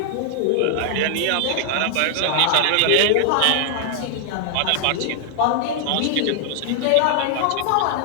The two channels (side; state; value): both; different; correlation -0.01